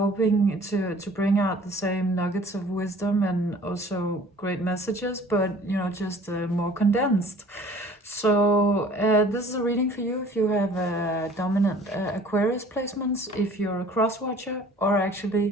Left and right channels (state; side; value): normal; both; correlation 0.50